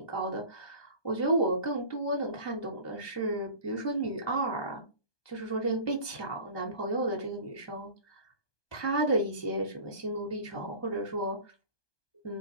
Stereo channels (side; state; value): right; late; 1.2 ms